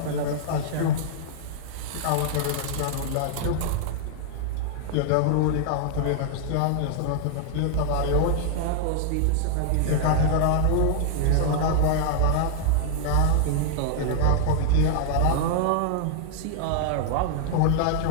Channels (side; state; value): both; different; correlation -0.01